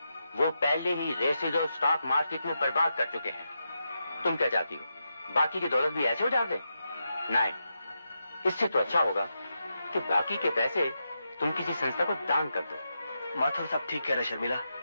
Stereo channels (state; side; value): inverted; both; correlation -0.86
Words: वो पहले ही रेसेज और स्टॉक मार्केट में बर्बाद कर चुके हैं। तुम क्या चाहती हो, बाकी की दौलत भी ऐसे उजाड़ दें? नहीं, इससे तो अच्छा होगा कि बाकी के पैसे तुम किसी संस्था को दान कर दो। माथुर साहब ठीक कह रहे शर्मिला,